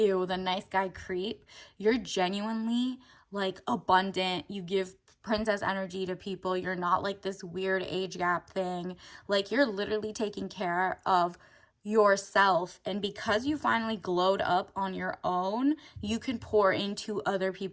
the nice guy creep. You're genuinely like abundant. You give princess energy to people. You're not like this weird age gap thing. Like, you're literally taking care of yourself. And because you finally glowed up on your own, you can pour into other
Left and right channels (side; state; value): both; identical; correlation 1.00